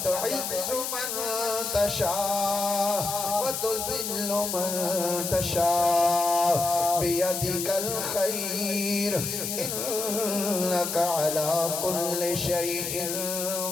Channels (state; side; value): noise; left; hiss, 3 dB below the sound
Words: तुइज़्ज़ु मन तशा व तुज़िल्लु मन तशा बियदिकल खैर इन्नका अला कुल्लि शैइन